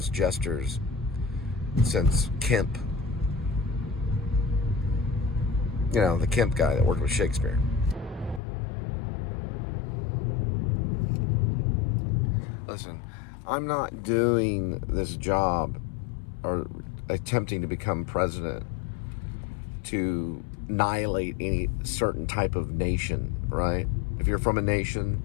jesters since Kemp. You know, the Kemp guy that worked with Shakespeare. Listen, I'm not doing this job or attempting to become president to annihilate any certain type of nation, right? If you're from a nation,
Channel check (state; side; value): drops out; right; at 8.4 s